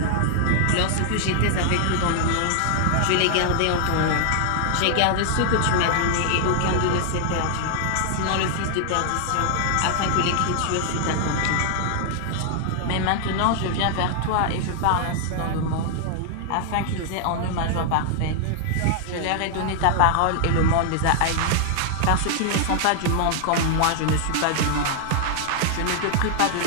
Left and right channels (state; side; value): different; both; correlation 0.00